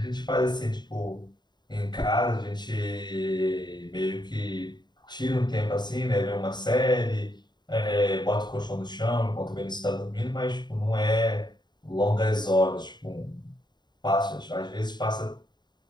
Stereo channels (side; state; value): right; late; 0.21 ms